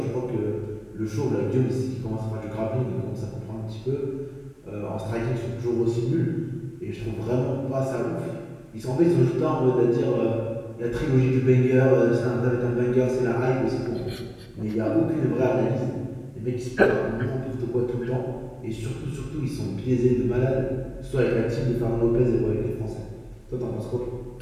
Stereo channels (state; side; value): identical; both; correlation 1.00